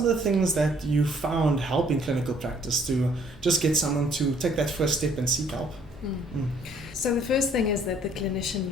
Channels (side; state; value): both; normal; correlation 0.62